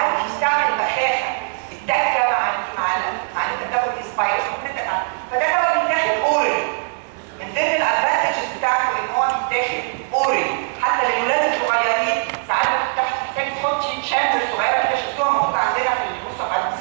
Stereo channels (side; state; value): left; silent; digital silence